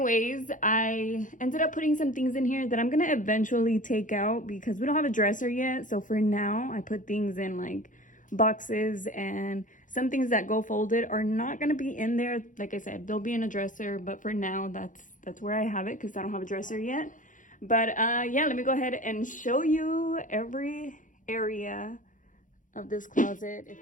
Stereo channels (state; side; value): late; right; 0.38 ms